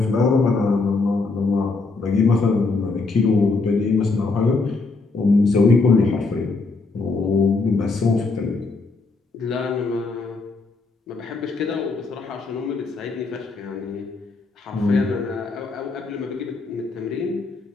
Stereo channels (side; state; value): right; quieter; 3.9 dB